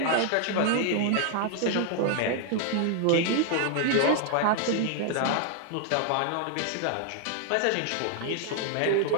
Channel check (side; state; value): both; different; correlation 0.00